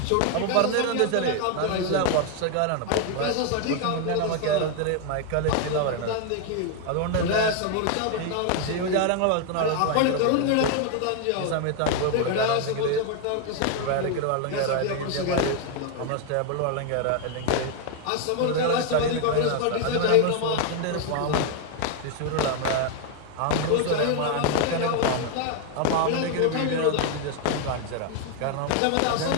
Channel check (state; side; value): different; both; correlation 0.01